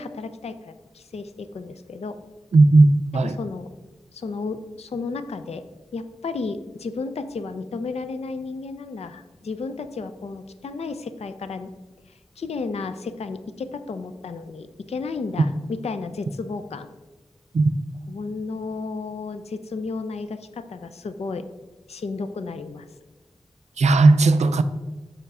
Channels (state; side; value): normal; both; correlation 0.89